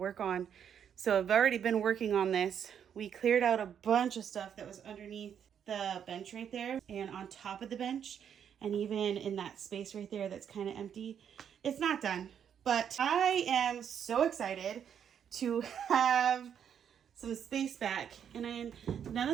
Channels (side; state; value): left; quieter; 8.4 dB